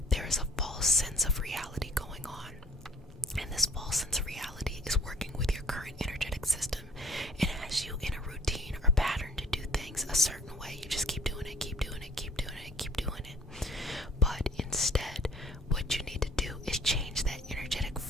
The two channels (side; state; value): both; normal; correlation 0.55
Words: there is a false sense of reality going on. And this false sense of reality is working with your current energetic system. It has you in a routine or pattern to do things a certain way. You just keep doing it, keep doing it, keep doing it, keep doing it. But instead, what you need to do is change that energetic